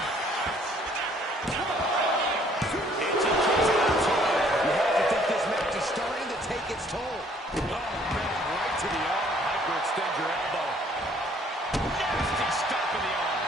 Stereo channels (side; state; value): both; normal; correlation 0.61